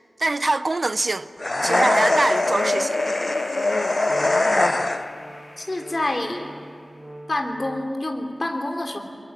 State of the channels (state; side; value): normal; both; correlation 0.96